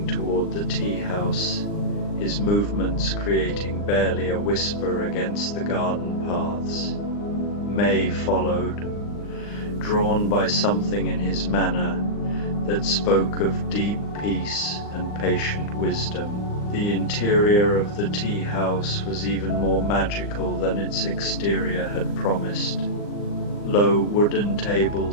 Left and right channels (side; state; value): right; late; 39 ms